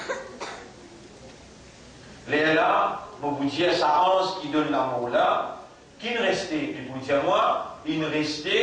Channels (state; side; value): identical; both; correlation 1.00